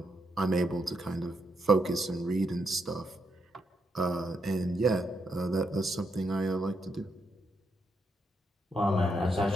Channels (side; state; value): both; normal; correlation 0.80